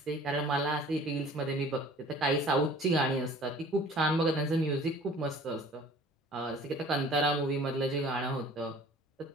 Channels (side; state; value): both; normal; correlation 0.48